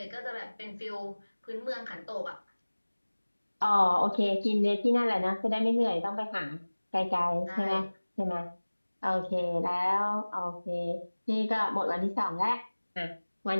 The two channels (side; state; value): both; inverted; correlation -1.00